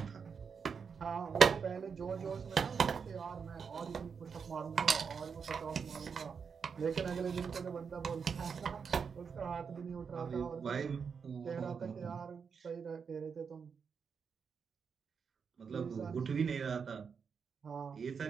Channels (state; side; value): quieter; left; 6.1 dB